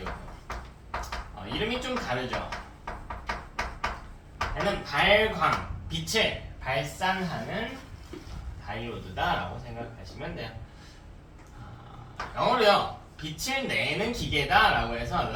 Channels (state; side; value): identical; both; correlation 1.00